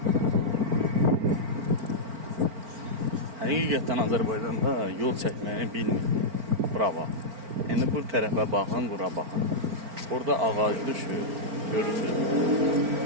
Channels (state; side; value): late; left; 4.4 ms